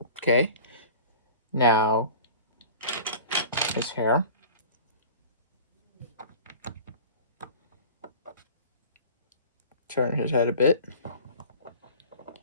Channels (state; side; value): inverted; both; correlation -0.40